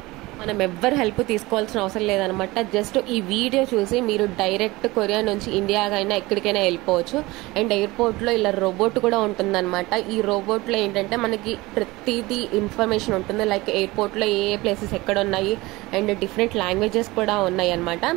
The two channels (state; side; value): quieter; left; 21.0 dB